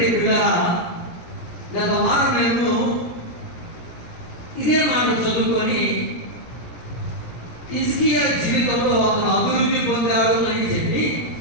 పిల్లరా, గత వారం మేము ఇదే మాట చదువుకొని హిజ్కియా జీవితంలో అతను అభివృద్ధి పొందాడు అని చెప్పి,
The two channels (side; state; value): right; late; 17 ms